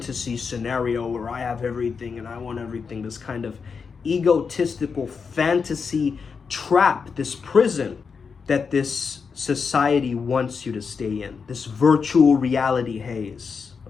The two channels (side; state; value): right; quieter; 5.6 dB